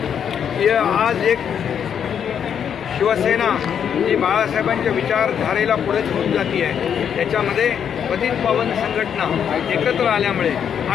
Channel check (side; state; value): right; quieter; 8.2 dB